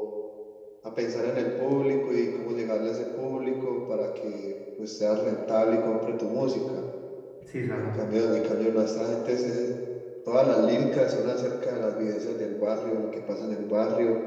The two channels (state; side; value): identical; both; correlation 1.00